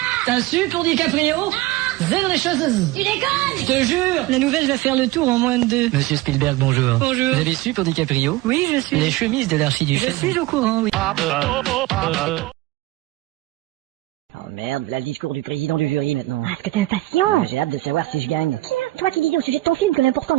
t'as su pour DiCaprio? Zéro les choses. Tu déconnes! Je te jure. La nouvelle va faire le tour en moins de 2. Monsieur Spielberg, bonjour. Bonjour. Vous avez su pour DiCaprio? Oui, je suis. Les chemises de Je l'archiduchesse. suis au courant, oui. Oh merde, là le discours du président du jury maintenant. Ah, est-ce que t'es impatient? J'ai hâte de savoir si je gagne. Tiens, toi qui disais au sujet de ton film que l'important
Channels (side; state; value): left; quieter; 18.3 dB